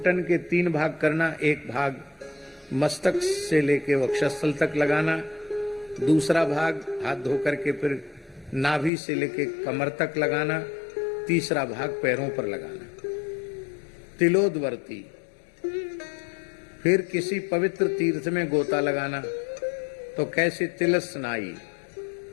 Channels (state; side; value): drops out; right; at 8.9 s